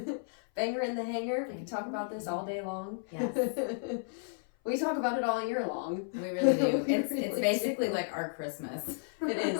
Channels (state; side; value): silent; right; 56 dB below the other